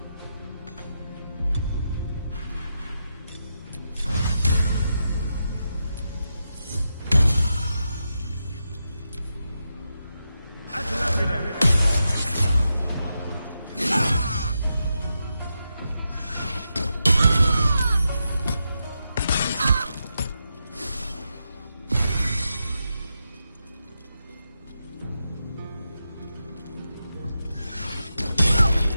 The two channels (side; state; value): both; inverted; correlation -0.87